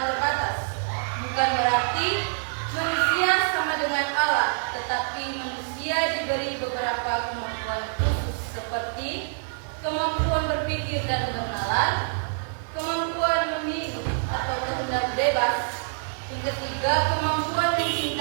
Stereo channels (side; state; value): left; silent; digital silence